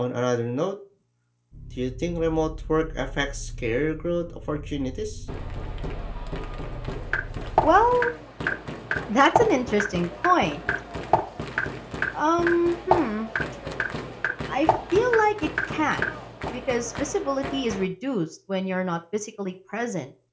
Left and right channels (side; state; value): both; identical; correlation 1.00